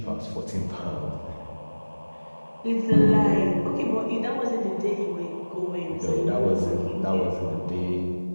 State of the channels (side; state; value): both; inverted; correlation -1.00